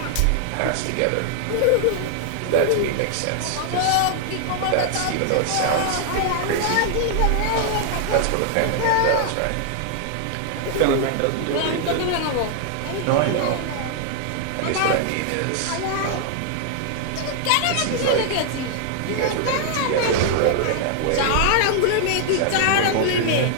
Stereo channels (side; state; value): both; different; correlation 0.00